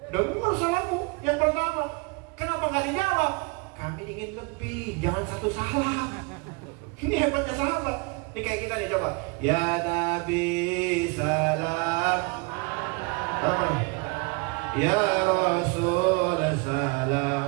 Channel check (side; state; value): left; quieter; 30.1 dB